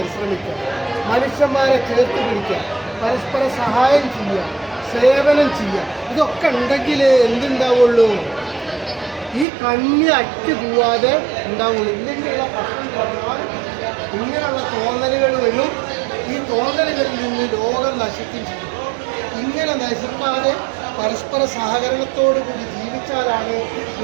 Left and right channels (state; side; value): drops out; left; at 9.5 s